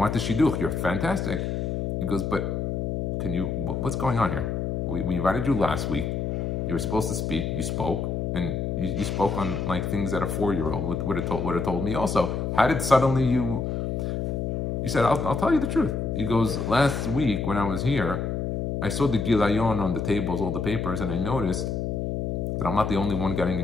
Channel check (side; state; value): left; noise; hum, 1 dB below the sound